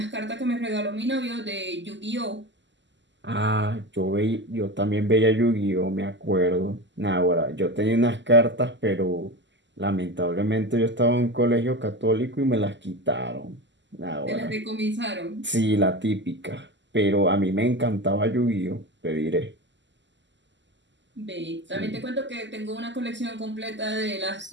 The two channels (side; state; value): left; late; 0.53 ms